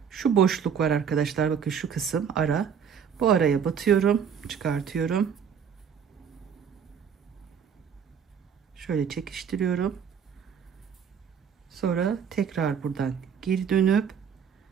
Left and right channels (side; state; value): left; quieter; 7.4 dB